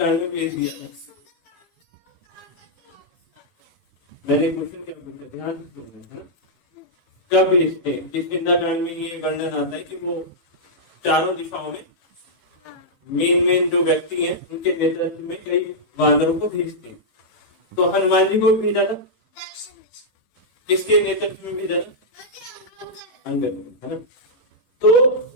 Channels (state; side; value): late; right; 18 ms